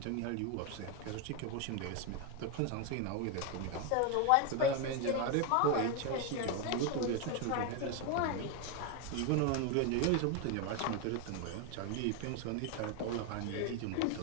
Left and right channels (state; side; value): different; both; correlation 0.01